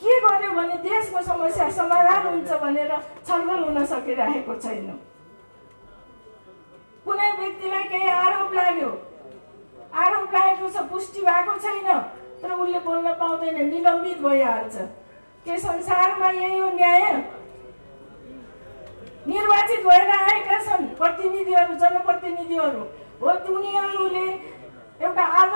के गर्यो भने देशको समस्या समाधान हुन्छ भनेर छलफल हुन सकिरहेको छैन। कुनै व्यक्तिलाई केही आरोप लाग्यो, आरोप लागेको छ, पुष्टि भएको छैन, तर उसले बोल्न पाउँदैन, निलम्बित भइहाल्छ। के संसारमा यही हो न्याय? निर्वाचित भएर आएका छन् प्रतिनिधिहरू, जनप्रतिनिधिहरू हो, उनीहरूले एउटा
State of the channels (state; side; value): inverted; both; correlation -1.00